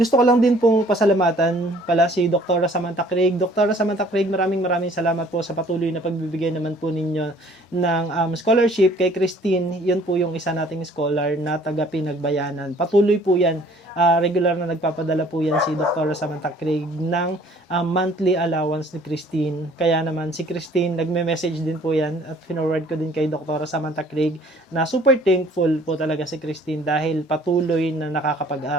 ko lang din pong pasalamatan pala si Dr. Samantha Craig. Dr. Samantha Craig, maraming salamat po sa patuloy na pagbibigay naman po ninyo ng scholarship kay Christine. Yun po yung isa nating scholar na taga Pinagbayanan. Patuloy po yan. Regular na nagpapadala po yan si Dr. Samantha Craig ng monthly allowance ni Christine. Kaya naman si Christine, nagme-message din po yan at forward ko din kay Dr. Samantha Craig na super thankful po talaga si Christine dahil patuloy na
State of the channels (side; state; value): both; normal; correlation 0.56